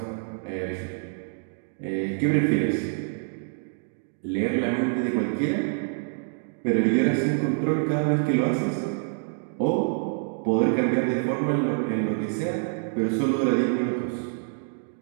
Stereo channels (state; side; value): silent; left; 61 dB below the other